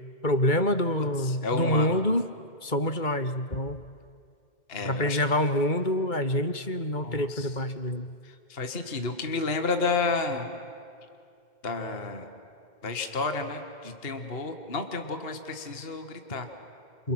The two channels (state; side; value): late; right; 2.1 ms